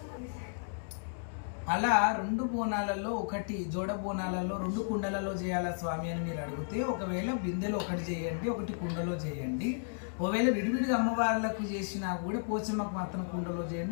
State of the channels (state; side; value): silent; right; digital silence